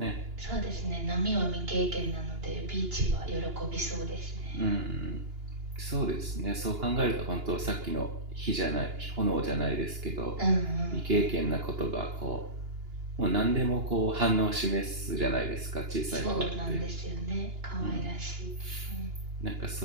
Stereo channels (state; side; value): late; left; 2.9 ms